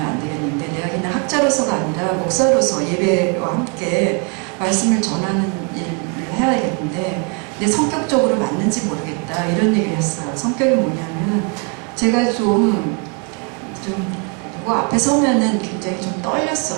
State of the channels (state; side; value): quieter; left; 36.2 dB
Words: 되겠는데 내가 그냥 학자로서가 아니라 목사로서 예배와 함께 말씀을 전하는 일을 해야겠는데 내 성격적으로 맞는지 모르겠다 이런 얘기를 했어요. 성격이 뭐냐면 제가 좀 누구 앞에 서면은 굉장히 좀